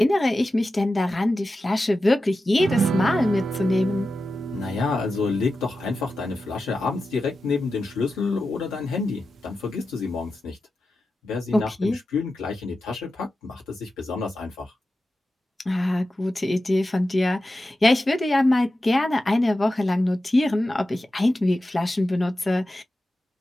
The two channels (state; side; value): normal; both; correlation 0.92